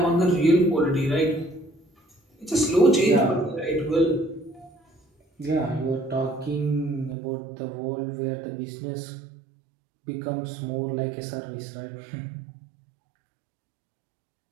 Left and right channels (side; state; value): left; drops out; at 7.2 s